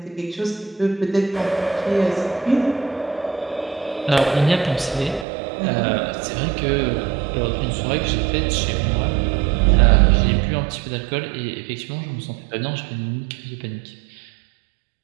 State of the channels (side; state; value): left; drops out; at 5.2 s